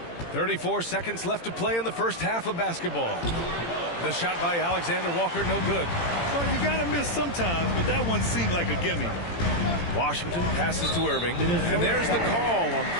34 seconds left to play in the first half of basketball. The shot by Alexander Walker, no good. Well, you got to miss sometimes, but that one seemed like a gimme. Washington passes to Irving, and there's the call on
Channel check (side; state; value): right; late; 18 ms